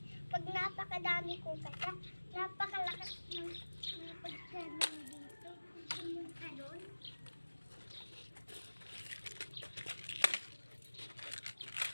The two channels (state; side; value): inverted; both; correlation -1.00